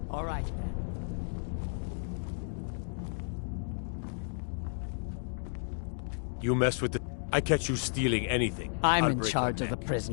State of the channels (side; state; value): right; silent; digital silence